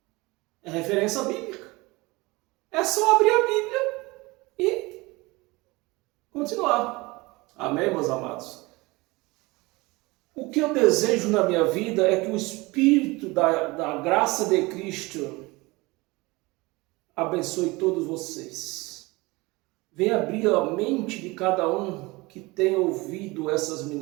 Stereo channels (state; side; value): quieter; left; 23.1 dB